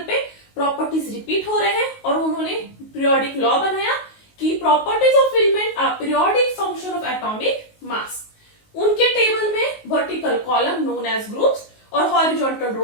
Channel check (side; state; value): right; late; 19 ms